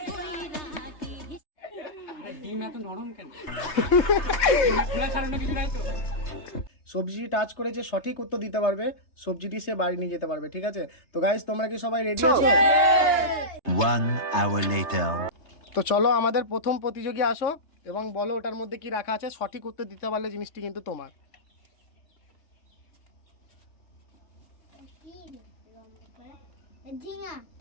ডিম এত নরম কেন? খোলা ছাড়ানো কিছু নাই তো? সবজি টাচ করে যে সঠিক উত্তর দিতে পারবে সবজিটি সে বাড়ি নিয়ে যেতে পারবে, ঠিক আছে? তো গাইস, তোমরা কি সবাই রেডি আছো? 1 hour later. তো চলো, আমাদের প্রথম প্রতিযোগী আসো এবং বলো ওটার মধ্যে কি রাখা আছে। সঠিক উত্তর দিতে পারলে জিনিসটি কিন্তু তোমার।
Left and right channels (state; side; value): late; right; 3.3 ms